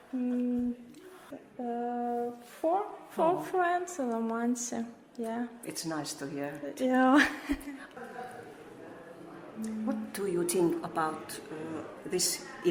Four friends in Ilomantsi. Yeah. It's nice to hear. Yeah. What do you think about this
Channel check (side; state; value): both; identical; correlation 1.00